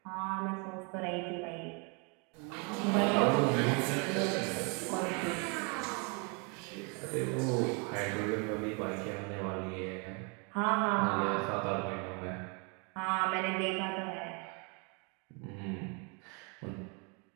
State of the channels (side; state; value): left; quieter; 33.8 dB